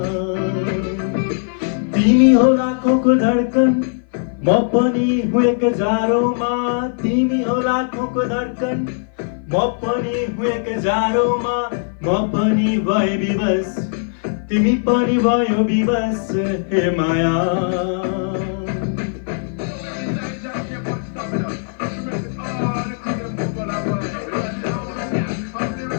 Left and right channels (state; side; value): silent; right; 57 dB below the other